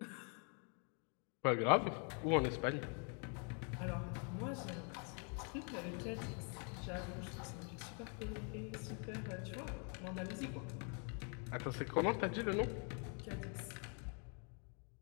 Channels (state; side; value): quieter; right; 39.2 dB